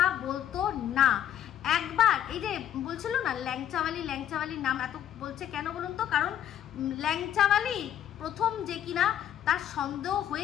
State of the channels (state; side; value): quieter; right; 10.6 dB